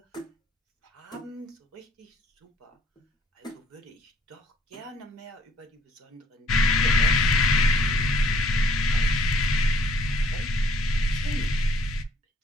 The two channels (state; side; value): normal; both; correlation 0.61